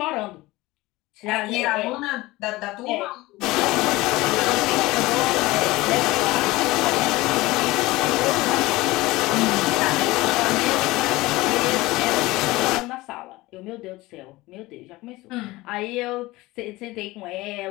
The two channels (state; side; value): quieter; right; 19.9 dB